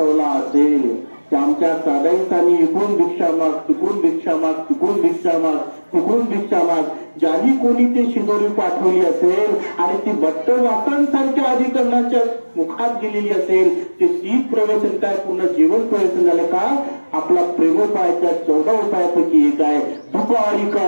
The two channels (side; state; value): both; inverted; correlation -1.00